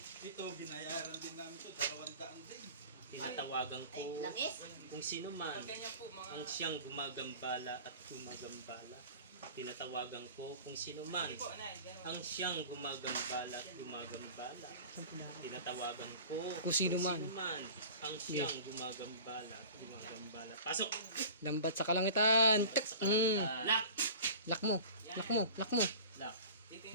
Ito, binayaran din namin ito, 200 din. Tinatawagan Ay, ko langis. kung sino man ang siyang gumagambala at gumagambala. Tinatawagan ko kung sino man ang siyang gumagambala at gumagambala. Tinatawagan ko Kung sino man. ang siyang gumagambala at gumagambala. Pasok! Lambat sa kalangitan. Tak. Lock! Lock mo. Lock mo. Lock mo. Lock!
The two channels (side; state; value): both; inverted; correlation -0.40